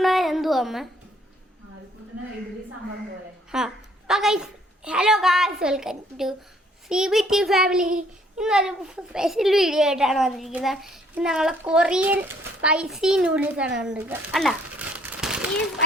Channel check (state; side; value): normal; both; correlation 0.64